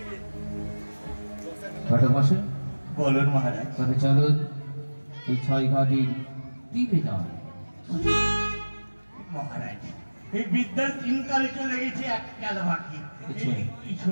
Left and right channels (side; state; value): both; inverted; correlation -1.00